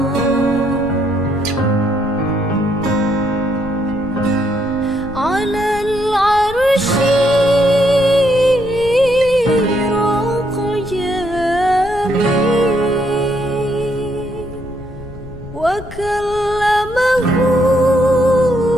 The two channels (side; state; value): left; noise; rumble, 14 dB below the sound